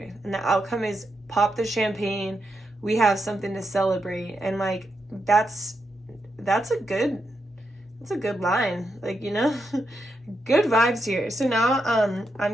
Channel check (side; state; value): both; normal; correlation 0.84